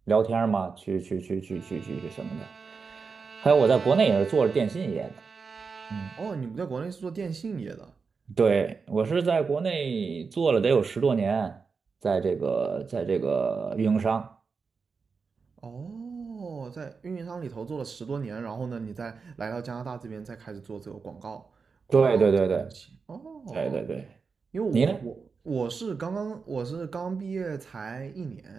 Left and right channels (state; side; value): quieter; left; 5.1 dB